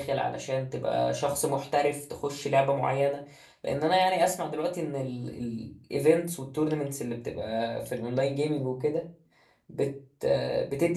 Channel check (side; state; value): both; identical; correlation 1.00